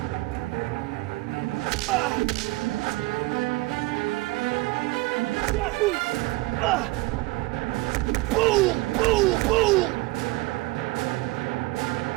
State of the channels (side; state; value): left; quieter; 20.7 dB